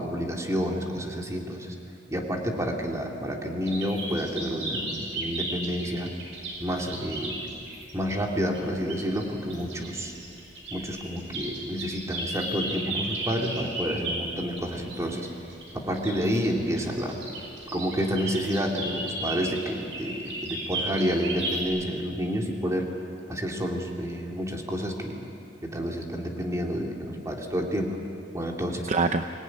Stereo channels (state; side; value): normal; both; correlation 0.60